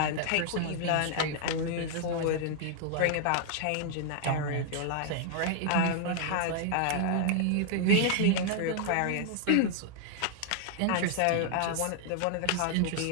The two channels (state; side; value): different; both; correlation 0.00